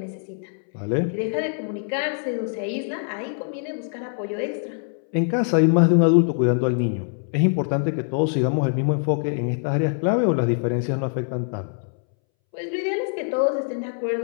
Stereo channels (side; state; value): right; silent; 63 dB below the other